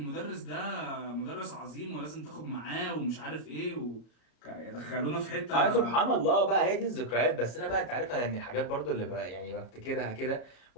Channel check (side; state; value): right; late; 34 ms